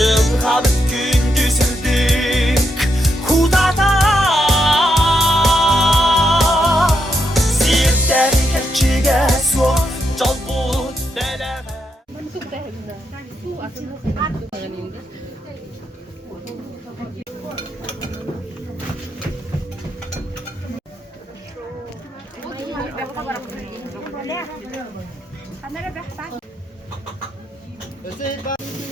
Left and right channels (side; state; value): both; normal; correlation 0.81